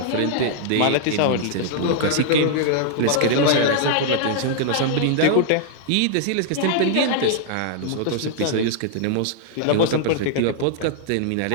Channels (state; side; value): different; both; correlation -0.01